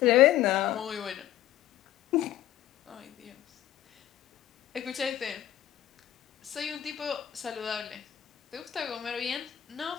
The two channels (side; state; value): right; quieter; 12.4 dB